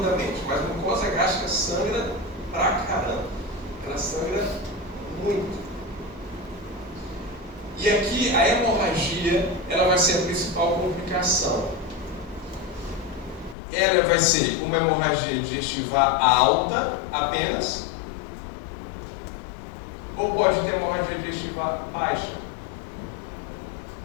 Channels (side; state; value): right; drops out; at 13.6 s